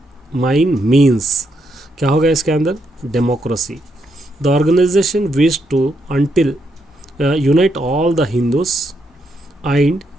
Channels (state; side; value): normal; both; correlation 0.78